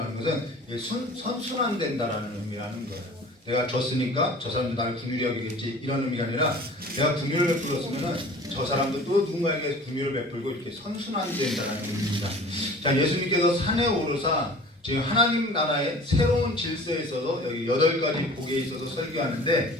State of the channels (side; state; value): both; normal; correlation 0.44